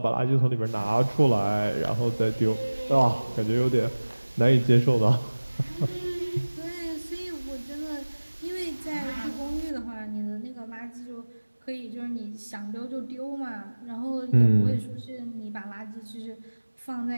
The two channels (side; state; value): both; inverted; correlation -1.00